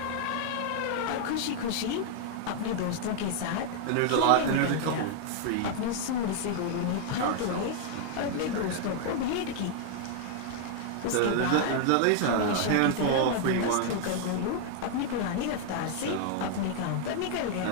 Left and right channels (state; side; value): different; both; correlation 0.00